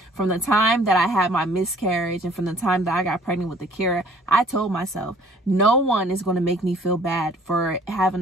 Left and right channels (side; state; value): both; normal; correlation 0.55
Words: from the time that I had my miscarriage and from the time that I got pregnant with Akira, I told myself, no one is going to make me feel bad for